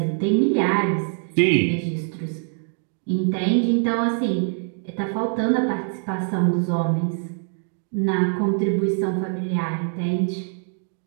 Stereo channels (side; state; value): left; silent; 56 dB below the other